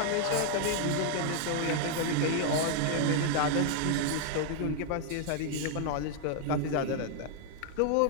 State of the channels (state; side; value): different; both; correlation 0.00